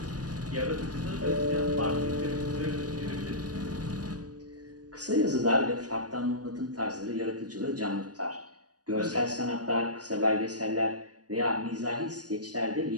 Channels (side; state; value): left; late; 0.68 ms